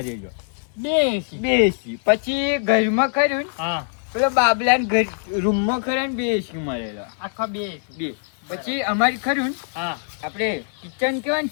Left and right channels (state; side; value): silent; right; digital silence